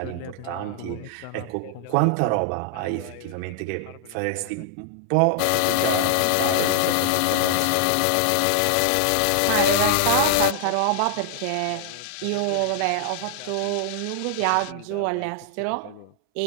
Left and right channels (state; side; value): different; both; correlation 0.00